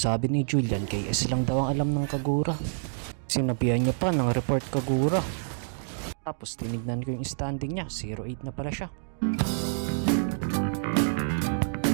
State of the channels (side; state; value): left; silent; digital silence